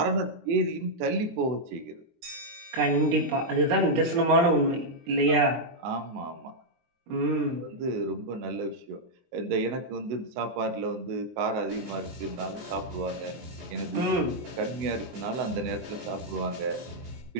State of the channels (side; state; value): left; late; 23 ms